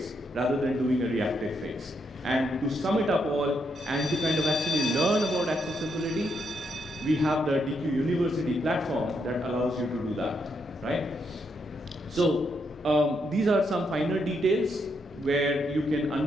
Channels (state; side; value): normal; both; correlation 0.78